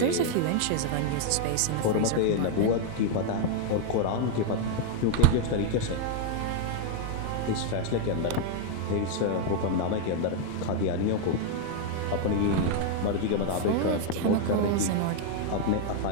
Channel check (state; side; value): different; both; correlation 0.00